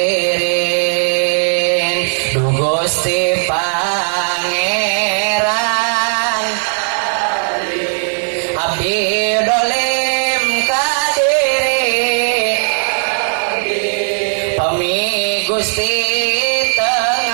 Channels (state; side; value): silent; left; 60 dB below the other